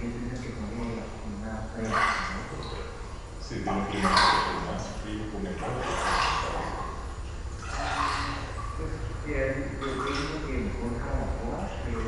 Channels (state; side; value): identical; both; correlation 1.00